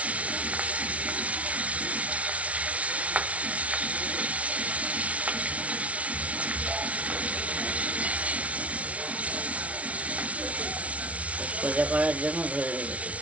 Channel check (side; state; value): left; late; 0.065 ms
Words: সোজা করার জন্য ধরে রেখেছি,